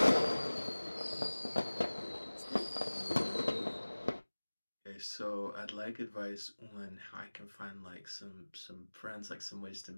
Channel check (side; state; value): both; inverted; correlation -1.00